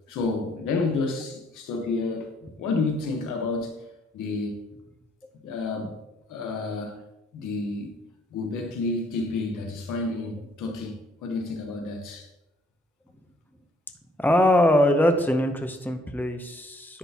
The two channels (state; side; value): normal; both; correlation 0.65